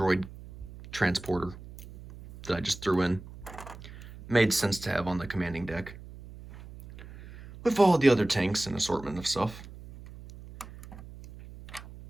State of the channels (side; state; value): right; noise; hum, 16 dB below the sound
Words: transporter that I just threw in. Made sense to have on the commanding deck. With all the other tanks and assortment of stuff.